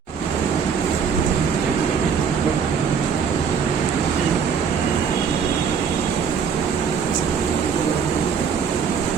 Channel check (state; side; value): quieter; left; 6.6 dB